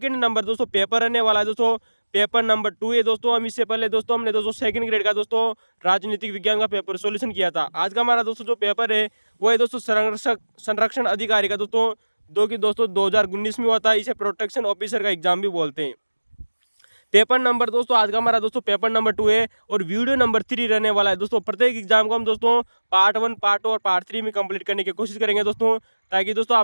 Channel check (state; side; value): inverted; both; correlation -1.00